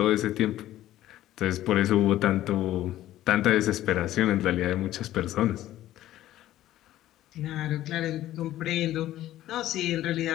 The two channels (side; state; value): right; quieter; 13.9 dB